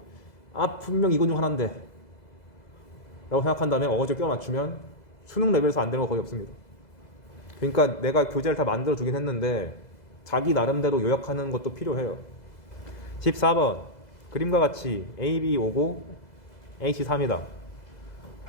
분명 이건 중 하나인데 라고 생각한 다음에 어거지로 껴 맞추면 수능 레벨에서 안 되는 거 거의 없습니다. 그러니까 내가 교재를 다 만들어 주긴 했는데 자기 나름대로 요약하는 것도 필요해요. 14번 그림과 같이 AB 5고 AC 3이다.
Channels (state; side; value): late; right; 2.0 ms